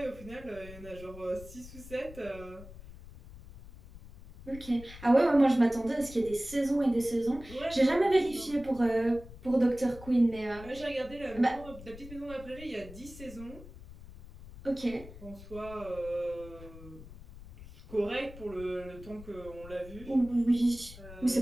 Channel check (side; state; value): left; noise; rumble, 16 dB below the sound